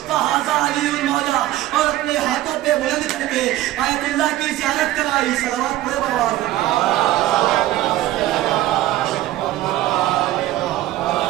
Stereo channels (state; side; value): quieter; left; 15.0 dB